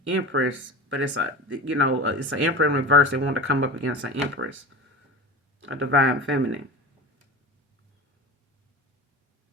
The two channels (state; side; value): normal; both; correlation 0.31